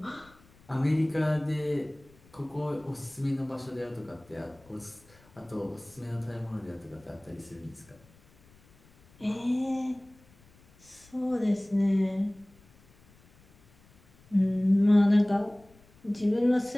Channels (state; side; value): noise; left; rumble, 28 dB below the sound